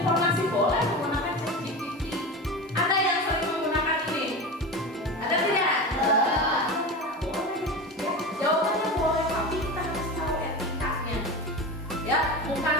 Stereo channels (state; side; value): normal; both; correlation 0.26